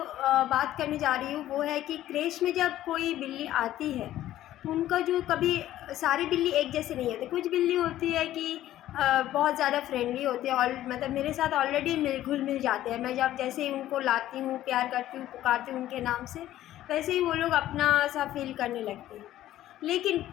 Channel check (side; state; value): right; quieter; 13.5 dB